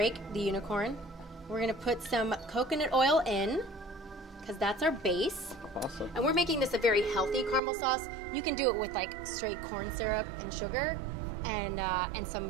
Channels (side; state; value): left; drops out; at 7.6 s